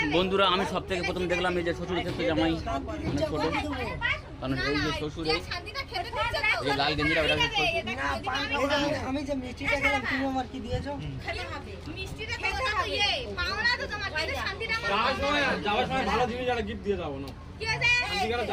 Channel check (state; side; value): identical; both; correlation 1.00